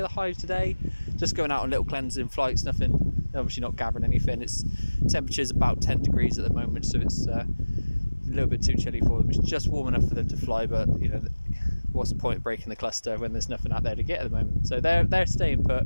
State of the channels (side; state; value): both; inverted; correlation -1.00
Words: the hives today, just going out on little cleansing flights, nothing, obviously not gathering anything. It's temperature's about 10 degrees at the moment, so it's a little bit too chilly for them. It's just warm enough for them to fly, but you know, what's the point of breaking the cluster when there's nothing out there to get at the moment? So they're staying put.